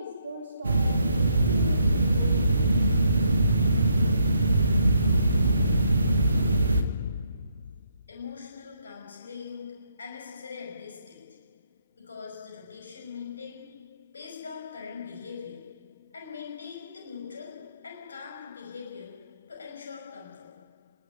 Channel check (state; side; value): inverted; both; correlation -0.73